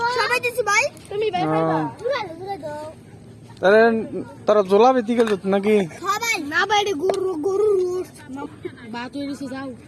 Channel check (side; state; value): both; identical; correlation 1.00